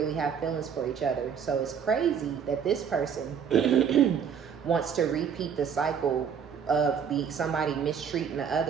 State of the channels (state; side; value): quieter; left; 7.3 dB